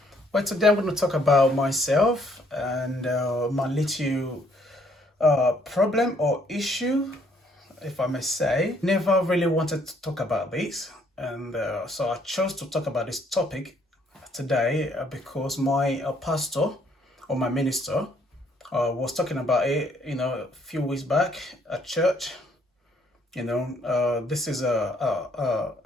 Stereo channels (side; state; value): both; normal; correlation 0.66